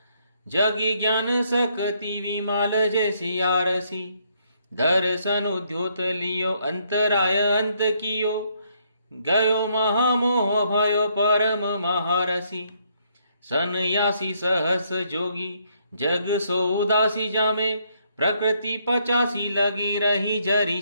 जगी ज्ञान शक्ति विमाल जैसी आरसी। दर्शन उद्योत लियो अंतराय अंत कियो, गयो महामोह भयो परम महारसी। सन्यासी सहस जोगी जग सो उदासी, जामे प्रकृति 85 लगी रही जरी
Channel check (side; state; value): both; inverted; correlation -0.72